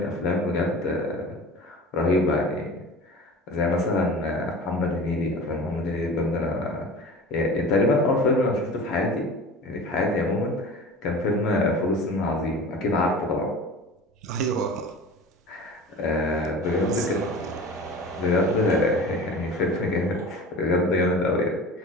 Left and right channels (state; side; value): normal; both; correlation 0.37